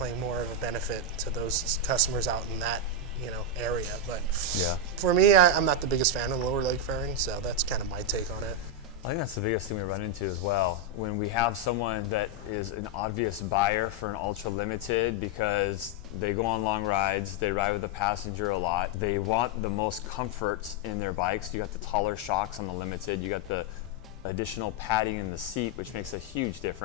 more of a benefit to those customers out in that area. But yeah, for me, I'm not the biggest fan of the lower leg fairing, so that's kind of my take on it. I think that's the biggest thing we run into as well. When we have someone that is an obvious buyer for an Ultra Limited because they go on long rides, they ride with a passenger a lot, they want the most comfort in their bikes. You got the taller shocks on the Limited, you got the additional padding in the seat, which makes a huge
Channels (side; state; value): both; normal; correlation 0.02